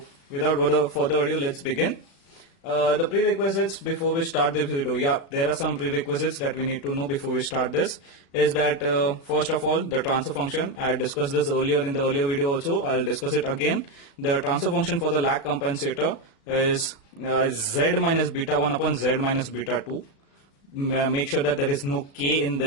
without further ado, let's begin. The prerequisites before we start this video, there are some prerequisites that we need to know before we start this. Is that first of all, the transfer function. I discussed this earlier in the earlier video also. I'll discuss it again. The transfer function for the lag compensator is z minus beta 1 upon z minus beta 2. Make sure that there is no k in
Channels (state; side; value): late; right; 36 ms